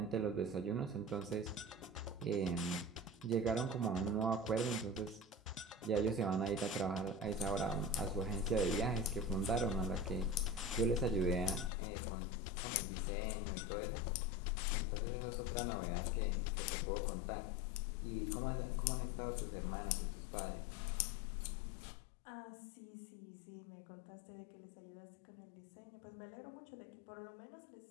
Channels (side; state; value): right; drops out; at 11.7 s